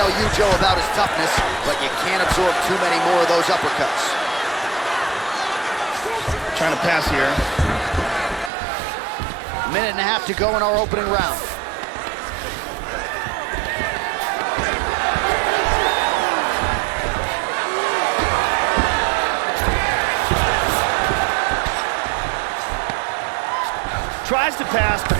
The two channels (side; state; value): left; drops out; at 8.5 s